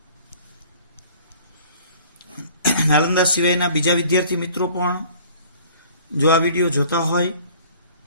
નાલંદા સિવાયના બીજા વિદ્યાર્થી મિત્રો પણ જો આ વિડીયો જોતા હોય,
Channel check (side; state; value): both; inverted; correlation -0.51